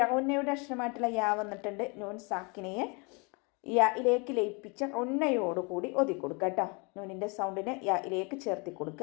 അക്ഷരമായിട്ടുള്ള യാ വന്നിട്ടുണ്ട്. നൂൻ സാക്കിനയെ യായിലേക്ക് ലയിപ്പിച്ച ഉന്നയോടുകൂടി ഒതുക്കൊടുക്കുക കേട്ടോ. നൂനിൻ്റെ സൗണ്ടിനെ യായിലേക്ക് ചേർത്തി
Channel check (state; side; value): quieter; right; 31.2 dB